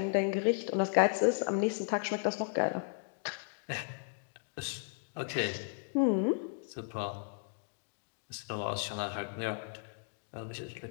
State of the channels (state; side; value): silent; right; digital silence